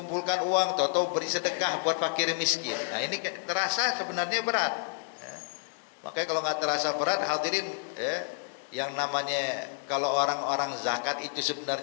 uang, tahu beri sedekah buat fakir miskin. Nah ini terasa sebenarnya berat. Ya. Makanya kalau nggak terasa berat, hadirin, yang namanya kalau orang-orang zakat itu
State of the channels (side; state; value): right; silent; 58 dB below the other